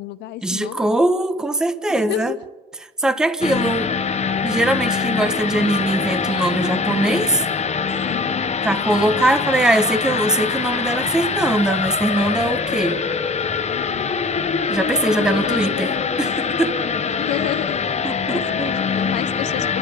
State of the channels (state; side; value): normal; both; correlation 0.47